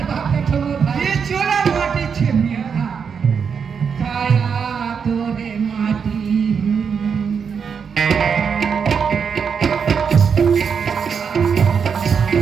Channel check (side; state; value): left; quieter; 6.5 dB